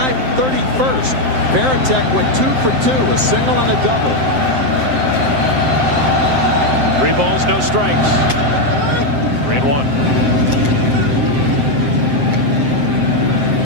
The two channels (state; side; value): late; left; 7.7 ms